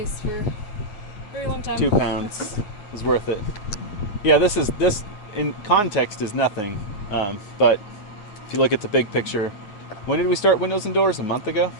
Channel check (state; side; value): late; right; 9.5 ms